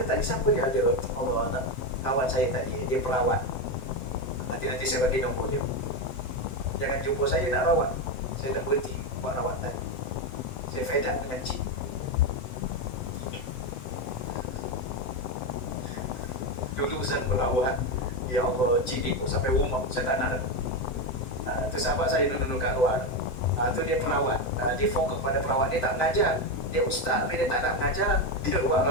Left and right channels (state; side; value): late; right; 7.8 ms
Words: tadi siapa dia ada? Allah, kawan saya tadi, dia perawat. Nanti saya bagi nombor dia. Jangan jumpa saya nak rawat. Saya dah berhenti buat rawatan. Saya fed up dengan cik. Dulu Zan merawat, ya Allah, cik ikut sampai rumah, saya tak nak. Tu sahabat saya duduk kat luar. Tu dia perawat, dia fokus pada perawat, dia tak mengajar. Dia ustaz tapi dia tak nak mengajar, dia buat